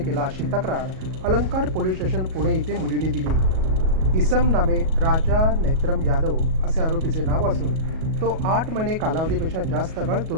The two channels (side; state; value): left; late; 37 ms